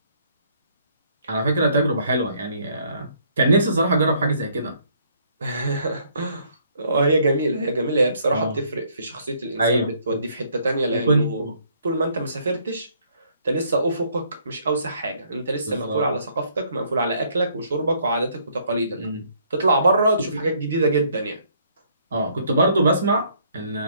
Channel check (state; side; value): inverted; both; correlation -0.65